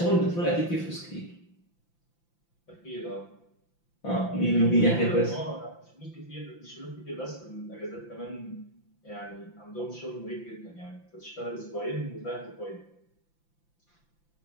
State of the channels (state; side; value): late; right; 5.9 ms